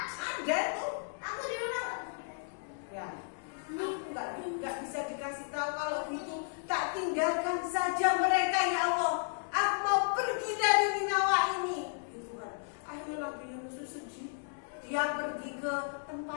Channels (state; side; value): silent; right; digital silence